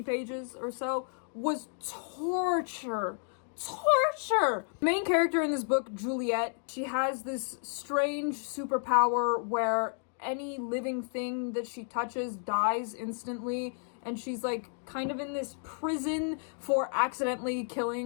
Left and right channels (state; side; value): silent; right; 56 dB below the other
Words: pages or so, was torture. Main character in this book, Juliet, she has this strange superpower where any living thing that she touches dies instantly, and she's like kind of in this prison for accidentally